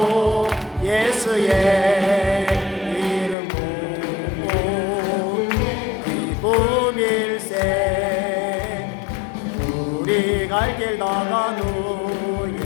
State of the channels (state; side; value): drops out; right; at 3.4 s